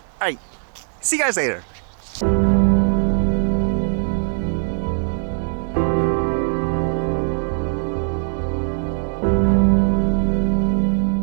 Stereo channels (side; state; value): left; silent; 60 dB below the other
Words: Alright, see you guys later.